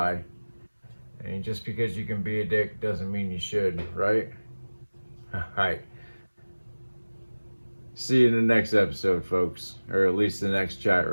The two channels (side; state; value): both; inverted; correlation -1.00